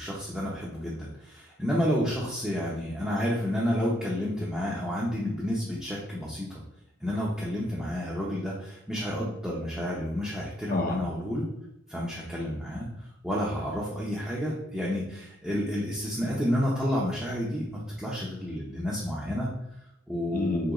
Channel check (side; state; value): both; normal; correlation 0.75